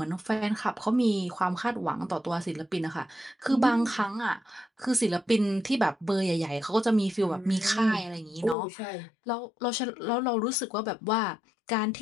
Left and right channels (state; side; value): drops out; right; at 8.6 s